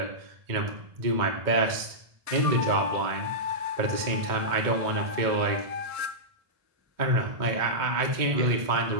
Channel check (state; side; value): late; left; 2.1 ms